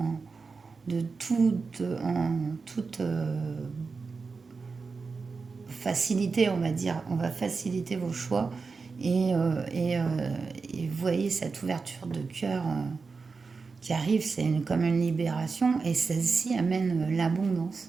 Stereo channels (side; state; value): left; quieter; 4.6 dB